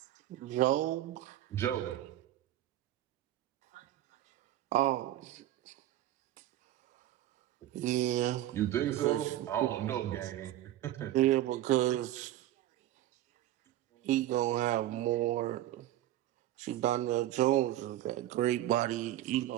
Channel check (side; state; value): left; quieter; 14.0 dB